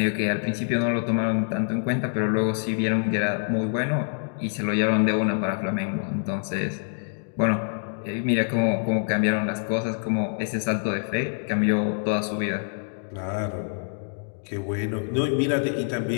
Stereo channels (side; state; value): right; silent; digital silence